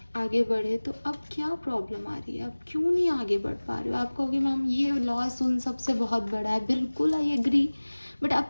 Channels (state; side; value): inverted; both; correlation -1.00